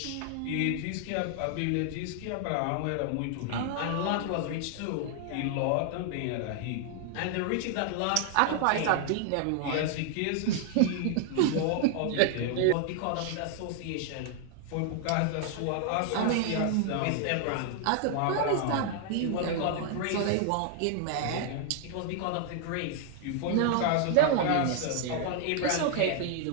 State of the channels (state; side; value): different; both; correlation 0.00